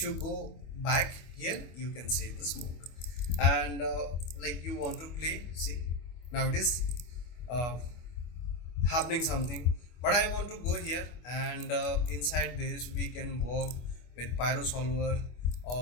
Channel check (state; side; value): late; right; 25 ms